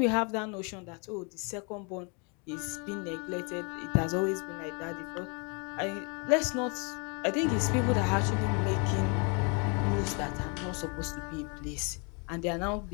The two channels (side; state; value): right; quieter; 34.5 dB